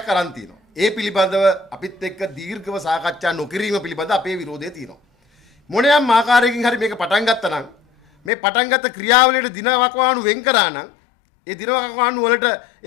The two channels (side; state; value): right; drops out; at 8.3 s